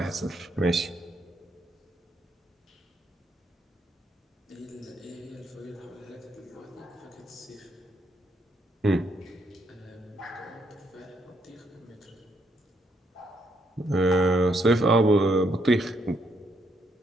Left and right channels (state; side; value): normal; both; correlation 0.75